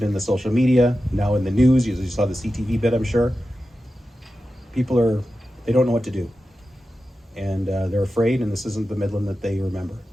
in the social media, now in the news. You saw the CTV bit, I'm sure. People they don't know what to do. And they're afraid, and this isn't the Midland that they remember.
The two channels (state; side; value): normal; both; correlation 0.92